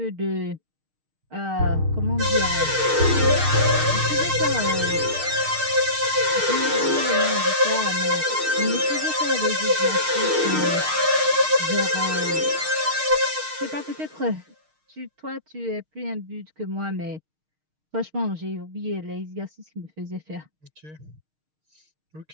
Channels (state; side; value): late; left; 6.5 ms